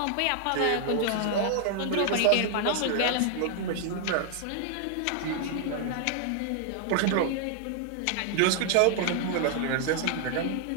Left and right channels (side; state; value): both; different; correlation 0.00